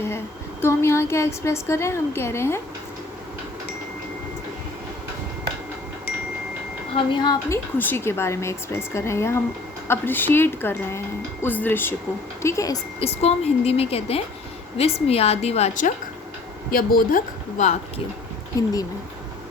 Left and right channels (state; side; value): quieter; right; 3.2 dB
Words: है. तो हम यहाँ क्या एक्सप्रेस कर रहे हैं? हम कह रहे हैं, हम यहाँ अपनी खुशी के बारे में एक्सप्रेस कर रहे हैं या हम अप्रिशिएट कर रहे हैं उस दृश्य को, ठीक है. इसको हम हिंदी में कहते हैं विस्मयादिवाचक या बोधक वाक्य हिंदी में.